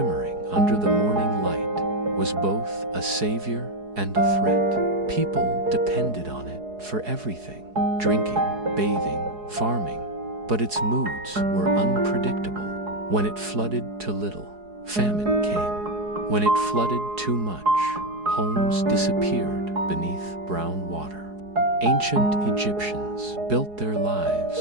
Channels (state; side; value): late; left; 4.7 ms